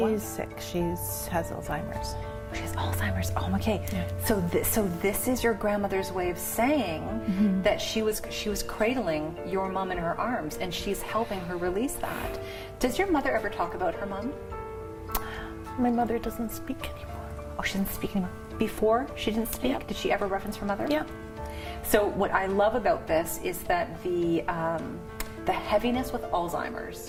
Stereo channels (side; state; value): both; identical; correlation 1.00